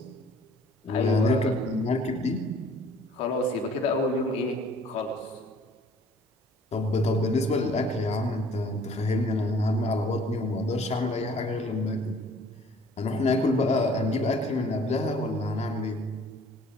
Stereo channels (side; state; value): both; normal; correlation 0.55